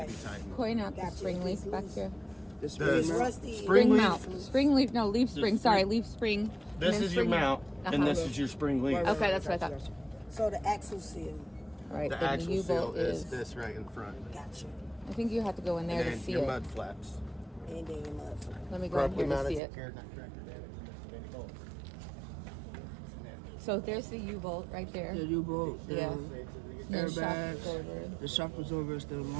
be tightened. point out the Gotcha. spring leaf back here? This The It's mount? rusty. Spring leaf. mount. Spring leaf. No, leaf spring. Sorry, leaf spring. and This then is your spring- mount, and Uh-huh. this is your spring leaf. Right, Okay, that's what I gotcha, thought. So the axle seal. Right, The then axle the seal U-bolt is this right in front. Gotcha. I think you have to go in there And to then see your it. mud flaps. And then your mud flap. Let me go in Properly here to mounted, see it. secured, not cracked or damaged, and missing any bolts. So there's the U-bolt right there. The U-bolt, the Yeah. No shock airbags, absorber. the shock absorber is the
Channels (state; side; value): drops out; left; at 19.6 s